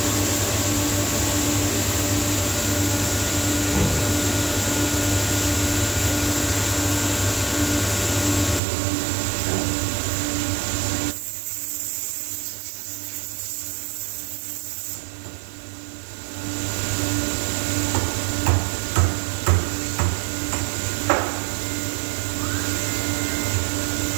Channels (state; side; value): drops out; left; at 8.6 s